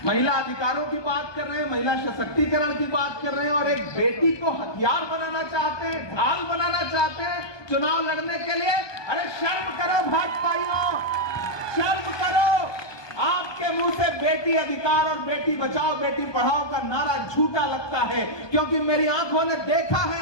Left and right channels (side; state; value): right; late; 1.2 ms